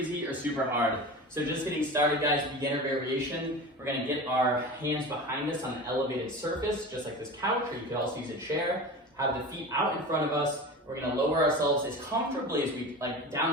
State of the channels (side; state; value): both; normal; correlation 0.32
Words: or super hard. So just getting started, guys, beginner variation. We're gonna get our hands behind us on an elevated surface, just like this couch, or you could also use a chair. Have the feet out in front of us. We're gonna lower ourselves as comfortably as we,